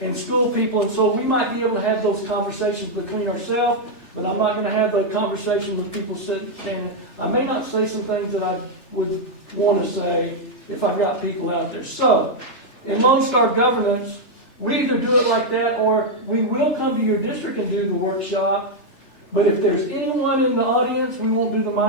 and school people, and so we might be able to have those conversations between ourselves, but I'm not going to have the conversation with people standing. I may not say some things that I would want to say if I've got people out there. So, in Lone Star Governance, we either do it like that or we will come to your district and do the workshop, but if there's anyone in the audience, we won't do the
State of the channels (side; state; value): right; late; 3.3 ms